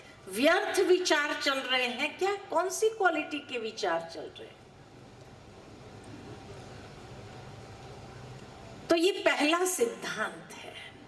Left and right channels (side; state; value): both; identical; correlation 1.00